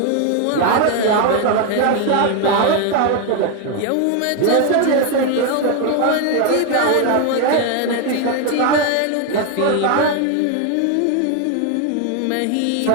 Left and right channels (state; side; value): different; both; correlation 0.01